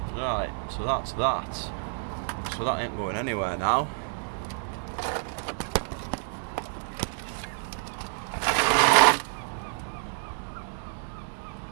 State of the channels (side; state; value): left; silent; digital silence